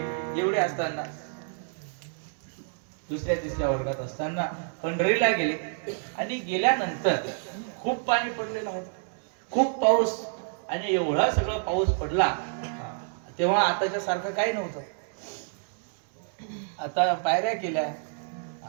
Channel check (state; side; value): silent; left; digital silence